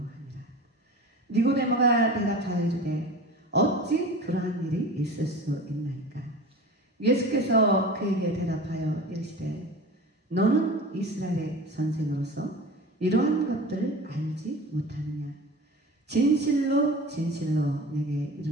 니고데모가 대답하여 이르되 어찌 그러한 일이 있을 수 있나이까? 예수께서 그에게 대답하여 이르시되 너는 이스라엘의 선생으로서 이러한 것들을 알지 못하느냐? 진실로 진실로 내게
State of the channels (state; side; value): normal; both; correlation 0.35